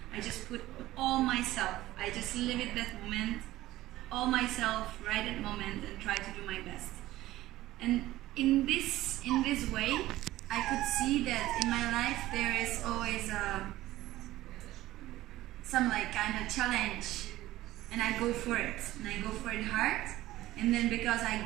I just put all myself. I just live it that moment, all myself, right at moment, and try to do my best. And in this way, I could see that in my life there is always some like kind of challenge, and I go for it, and I go for it hard. And then because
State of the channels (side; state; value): left; quieter; 16.0 dB